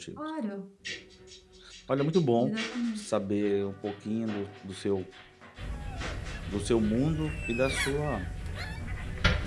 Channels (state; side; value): identical; both; correlation 1.00